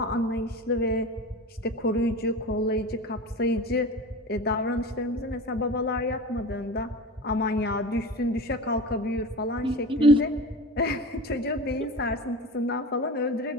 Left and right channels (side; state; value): both; normal; correlation 0.32